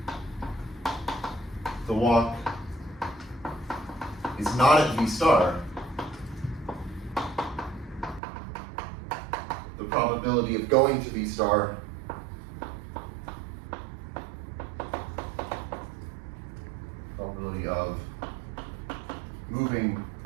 the walk is not at V star, the probability of going to V star probability of moving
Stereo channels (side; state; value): left; drops out; at 8.2 s